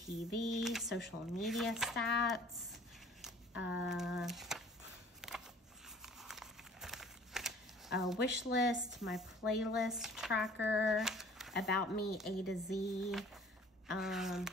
social media stats, a wish list, my playlist tracker, about me A to Z, a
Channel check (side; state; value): both; normal; correlation 0.51